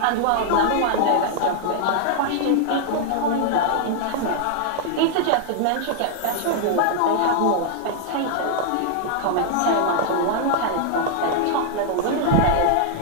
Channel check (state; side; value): different; both; correlation -0.01